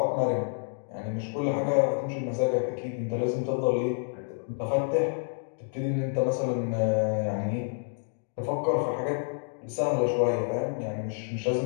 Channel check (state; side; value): silent; right; digital silence